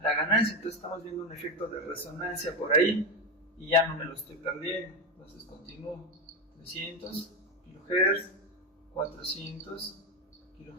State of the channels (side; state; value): both; normal; correlation 0.14